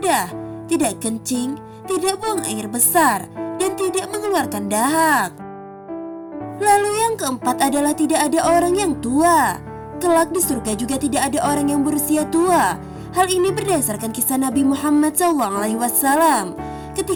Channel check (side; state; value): both; identical; correlation 1.00